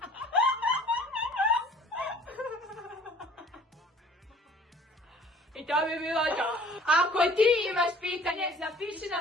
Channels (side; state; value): both; normal; correlation 0.51